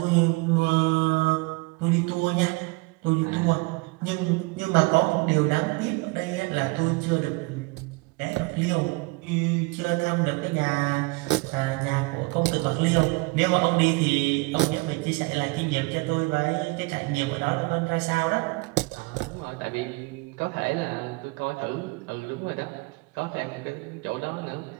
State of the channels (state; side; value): quieter; left; 26.6 dB